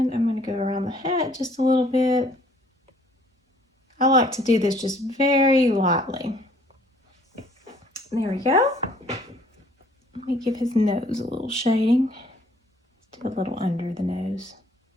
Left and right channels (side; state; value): both; normal; correlation 0.59